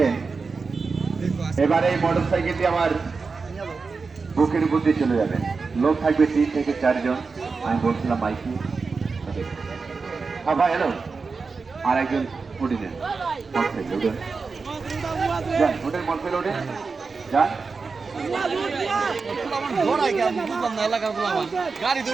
এবার এই মোটর সাইকেলটি আমার বুকের উপর দিয়ে চলে যাবে। লোক থাকবে 3 থেকে 4 জন। আমি বলছিলাম মাইকি হ্যাঁ ভাই হ্যালো আর একজন উঠে নেন ওঠেন মোটরসাইকেল ওঠেন যান গাড়ি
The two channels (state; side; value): quieter; left; 4.6 dB